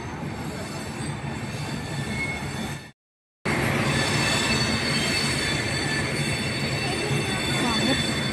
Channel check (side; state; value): both; identical; correlation 1.00